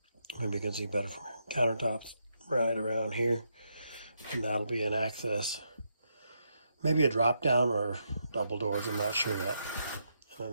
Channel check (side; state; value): both; inverted; correlation -0.80